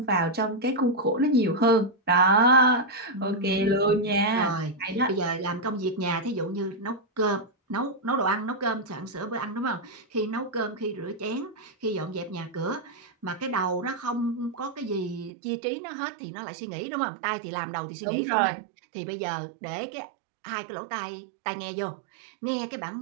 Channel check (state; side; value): drops out; left; at 15.3 s